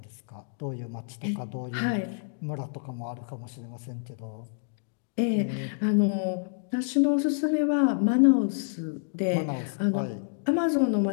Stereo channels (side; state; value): right; silent; digital silence